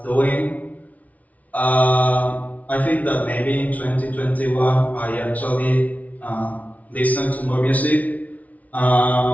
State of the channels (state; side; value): late; right; 0.071 ms